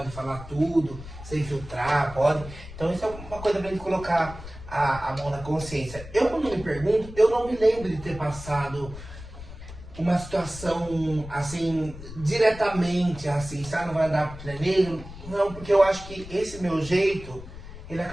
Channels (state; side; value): noise; left; rumble, 14 dB below the sound